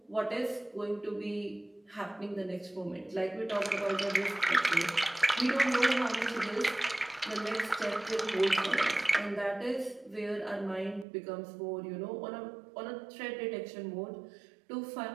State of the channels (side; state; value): left; drops out; at 11.1 s